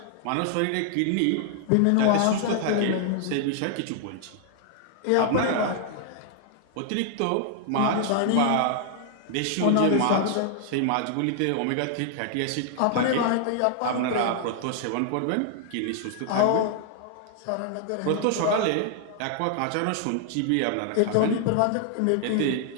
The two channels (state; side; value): different; both; correlation -0.01